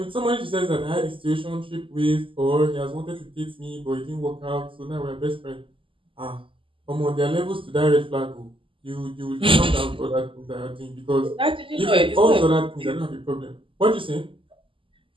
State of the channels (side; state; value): left; late; 0.25 ms